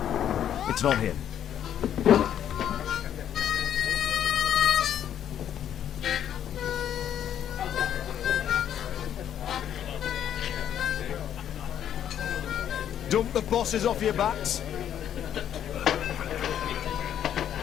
It's not him. Dump the bosses off your backs.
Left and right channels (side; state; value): right; quieter; 10.0 dB